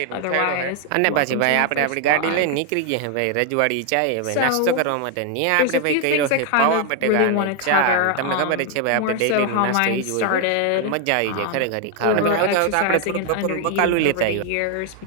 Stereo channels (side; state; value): both; different; correlation 0.00